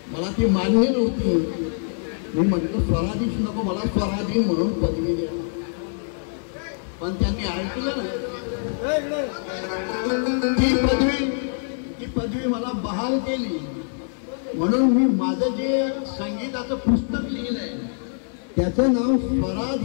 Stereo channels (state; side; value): silent; right; 63 dB below the other